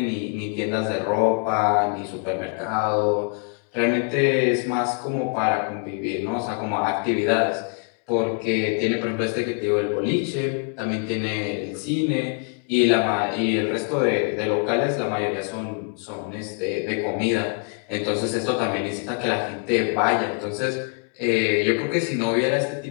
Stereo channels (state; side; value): quieter; right; 39.9 dB